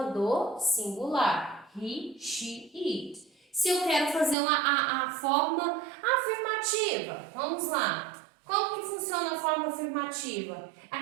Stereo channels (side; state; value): left; drops out; at 4.4 s